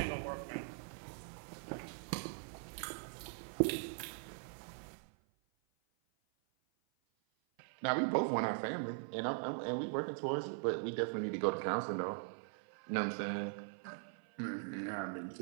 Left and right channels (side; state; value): left; silent; 50 dB below the other